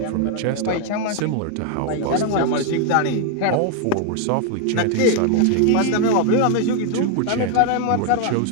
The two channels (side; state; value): both; different; correlation 0.00